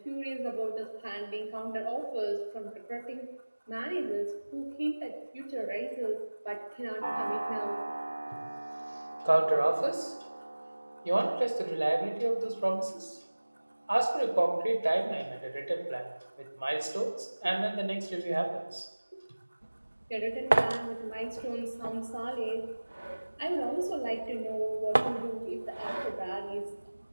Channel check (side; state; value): both; inverted; correlation -1.00